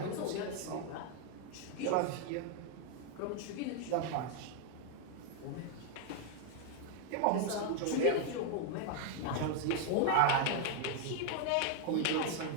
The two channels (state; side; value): different; both; correlation 0.00